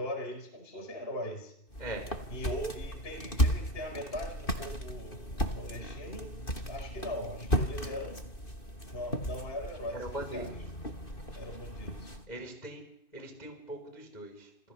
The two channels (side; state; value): right; late; 2.6 ms